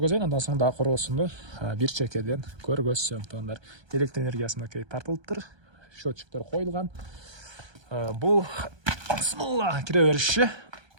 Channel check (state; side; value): late; left; 1.3 ms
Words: андан соң дагы короосунду бир чекеден көргөзсөм туугандар. Электр энергиясы мынакей тартылыптыр. Счетчиктер коюлган. Бул бисмилла кире бериши.